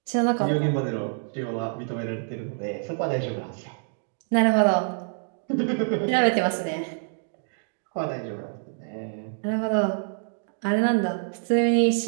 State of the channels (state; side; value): silent; left; digital silence